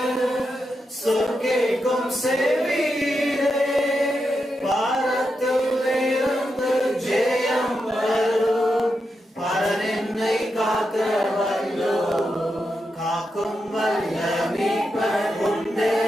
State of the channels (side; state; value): both; normal; correlation 0.86